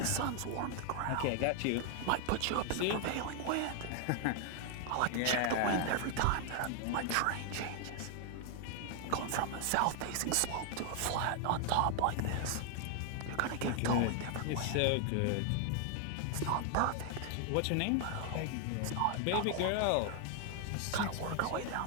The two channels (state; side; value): different; both; correlation 0.00